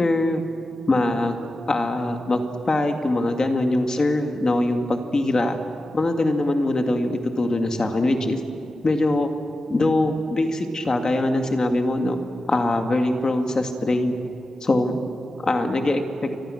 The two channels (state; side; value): normal; both; correlation 0.92